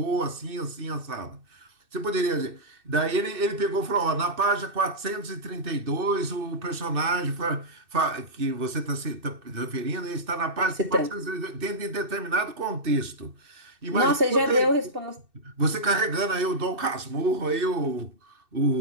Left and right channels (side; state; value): left; late; 2.6 ms